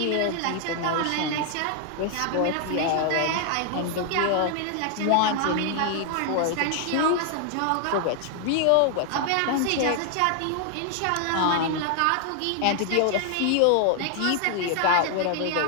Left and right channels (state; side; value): different; both; correlation 0.00